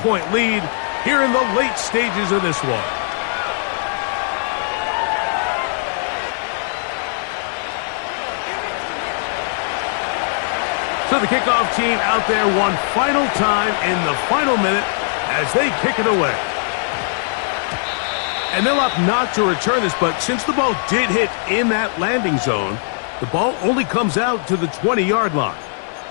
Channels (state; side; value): silent; right; digital silence